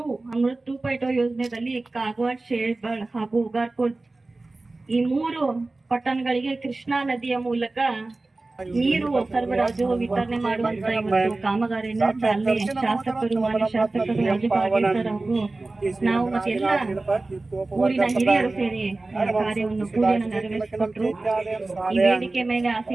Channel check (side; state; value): left; quieter; 3.2 dB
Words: Amrit 2.0 ಯೋಜನೆಯಲ್ಲಿ ಕಾಗವಾಡ, ಶೇರ್ಬಾಳ್ ಹಾಗೂ ಉಗಾರ್ಪುರ್ ಈ 3 ಪಟ್ಟಣಗಳಿಗೆ ಕೃಷ್ಣಾ ನದಿಯ ಮೂಲಕ ನೀರು ಸರಬರಾಜು ವಿತರಣೆ ಮಾಡುವಂತ ಇವತ್ತು ಕಾಮಗಾರಿಯನ್ನು ಚಾಲನೆ ಶಾಸಕರು, ಮಾನ್ಯ ಶಾಸಕರು ರಾಜು ಕಾಗೇಸರ್ ಹಾಗೂ ನಾವು ಮತ್ತೆ ಎಲ್ಲ ಊರಿನ ಹಿರಿಯರು ಸೇರಿ ಕಾರ್ಯವನ್ನು ಪೂಜೆಯನ್ನು ನೆರವೇರಿಸಿಕೊಟ್ರು. ಈ ವೇದಿಕೆ ಮೇಲೆ